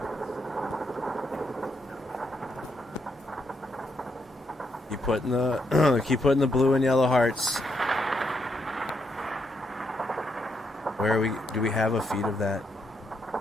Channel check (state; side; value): normal; both; correlation 0.78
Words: Keep putting the blue and yellow hearts. Where are we? Do we have a feed of that?